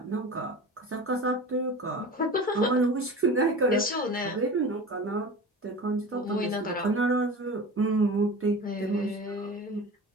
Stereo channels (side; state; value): both; normal; correlation 0.34